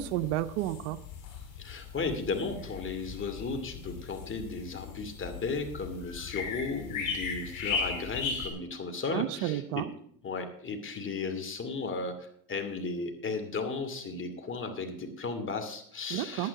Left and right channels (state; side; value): normal; both; correlation 0.09